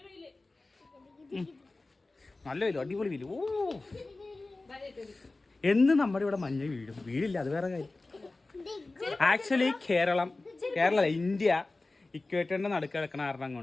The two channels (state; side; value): quieter; right; 3.2 dB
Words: നല്ല വെയിലും അടിപൊളി വെയിലും. ഓ എന്ന് നമ്മുടെ ഇവിടെ മഞ്ഞ വീടില്ല, അത് വേറെ കാര്യം. ആക്ച്വലി കേരള ഇന്ത്യ ഇക്വേറ്ററിന്റെ നടുക്ക് കിടക്കണ കാരണം